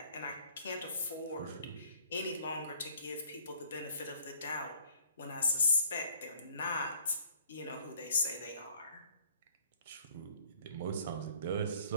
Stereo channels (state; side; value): inverted; both; correlation -0.58